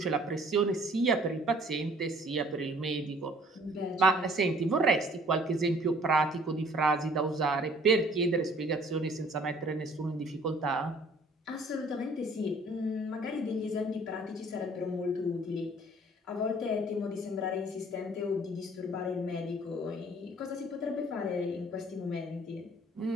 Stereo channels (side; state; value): both; normal; correlation 0.55